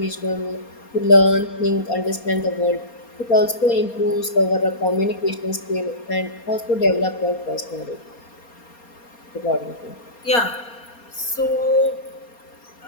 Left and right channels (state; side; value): late; right; 4.3 ms